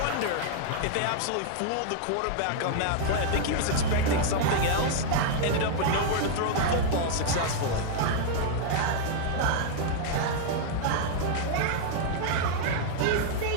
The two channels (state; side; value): different; both; correlation -0.01